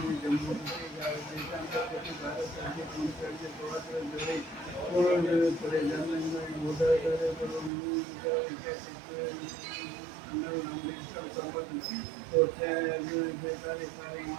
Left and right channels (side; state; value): left; drops out; at 7.7 s